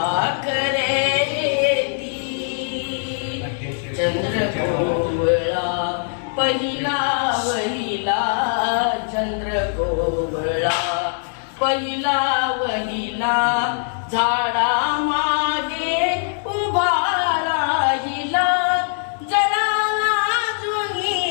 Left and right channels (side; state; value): right; silent; digital silence